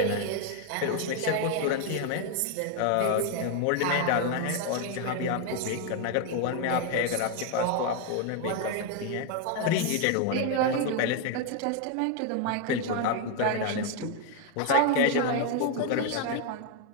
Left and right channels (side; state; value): both; different; correlation 0.01